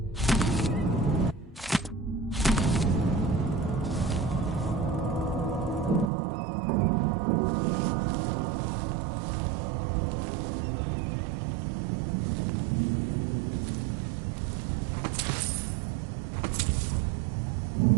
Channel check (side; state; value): left; drops out; at 6.1 s